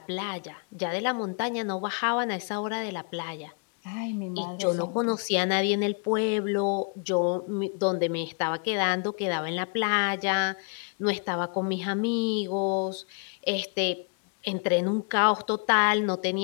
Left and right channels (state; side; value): quieter; right; 39.8 dB